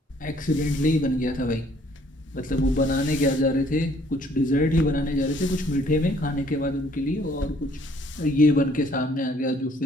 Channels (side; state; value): both; normal; correlation 0.61